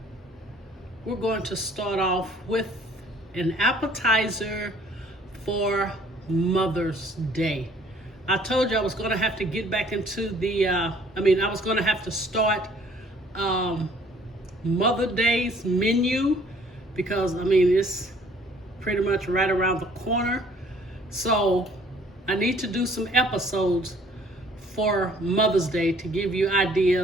We're going to start off with an appetizer for Mother's Day. I told you I was going to have to get back into the, I was going to have to start Mother's Day's menu because, it's pretty much right around the corner. So I need to do some episodes for Mother's Day to give you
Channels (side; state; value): both; normal; correlation 0.58